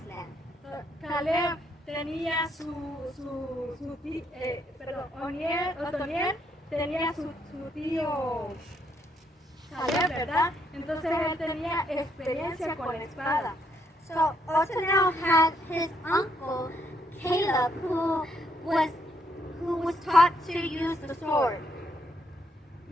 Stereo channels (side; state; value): both; normal; correlation 0.73